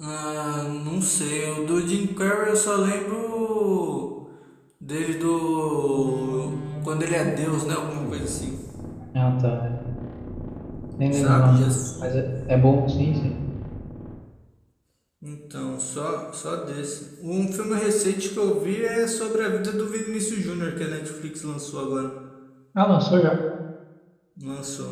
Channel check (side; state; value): both; identical; correlation 1.00